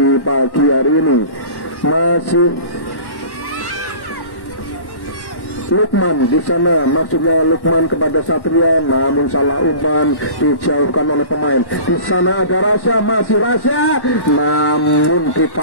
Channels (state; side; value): late; right; 1.1 ms